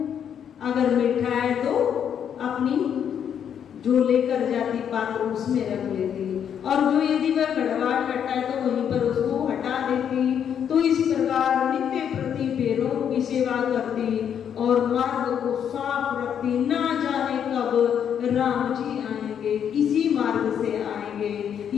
अगर मीठा है तो अपनी जो लेकर जाती पात्र उसमें रख लेती, और जो यदि वह कड़वा खट्टा है तो वहीं पर उसको हटा देती। तो इस प्रकार नित्य प्रति बेरों की सेवा करती और मार्ग को साफ रखती। ना जाने कब राम जी आएंगे, इसी मार्ग से आएंगे,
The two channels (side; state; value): right; quieter; 8.5 dB